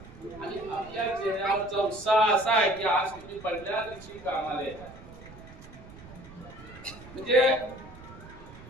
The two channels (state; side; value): noise; right; rumble, 18 dB below the sound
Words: आणि आपल्या चेहऱ्यावरचा उत्साह असा आहे की आज तुम्ही पहिल्या दिवशी कामाला येता. म्हणजे